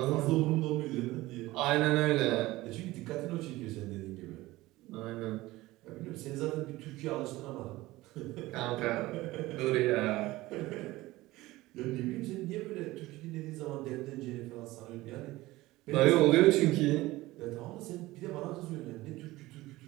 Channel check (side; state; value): left; quieter; 18.5 dB